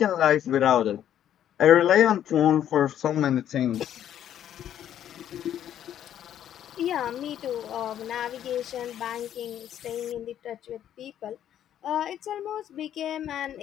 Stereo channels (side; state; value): right; quieter; 10.6 dB